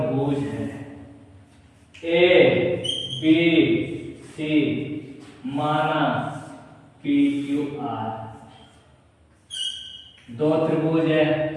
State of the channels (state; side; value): identical; both; correlation 1.00